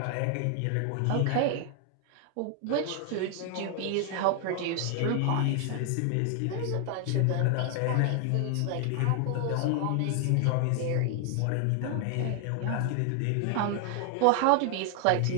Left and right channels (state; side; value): different; both; correlation 0.00